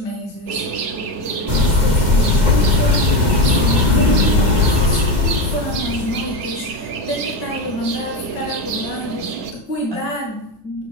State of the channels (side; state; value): left; late; 2.1 ms